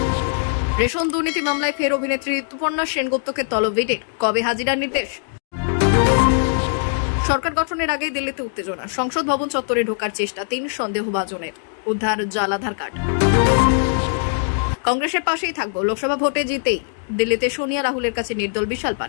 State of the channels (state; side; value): silent; right; digital silence